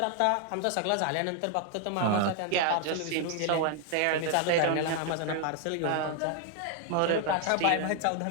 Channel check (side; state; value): both; different; correlation 0.00